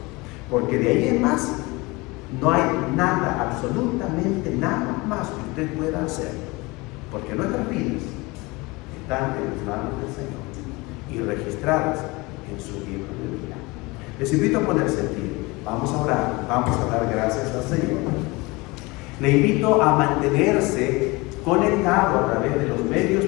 Porque de ahí en más, no hay nada, absolutamente nada más que usted pueda hacer. Porque nuestras vidas están en las manos del Señor y registradas en su libro de vida. Les invito a ponerse en pie. Vamos a orar, vamos a dar gracias al Señor. Le invito a mantenerse conectado a través de los medios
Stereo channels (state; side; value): quieter; right; 24.1 dB